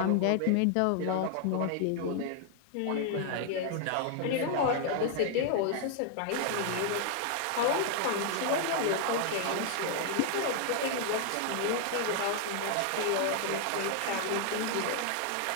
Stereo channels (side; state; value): both; different; correlation 0.00